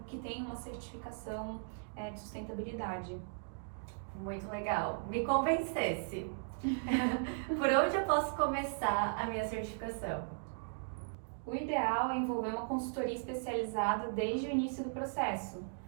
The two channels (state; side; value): silent; left; digital silence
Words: tenham uma certificação de sustentabilidade. Muito legal. Me convencesse. Por onde eu posso começar a minha certificação? O ideal é envolver uma consultoria especializada desde o início do processo.